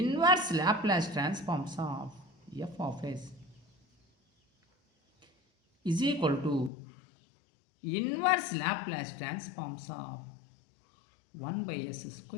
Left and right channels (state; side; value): drops out; right; at 6.7 s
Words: Laplace transforms of F of s is equal to inverse Laplace transforms of 1/s